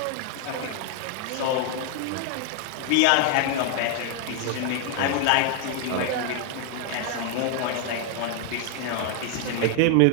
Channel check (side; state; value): both; different; correlation 0.00